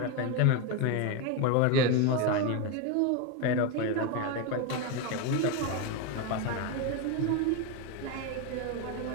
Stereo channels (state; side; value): different; both; correlation 0.02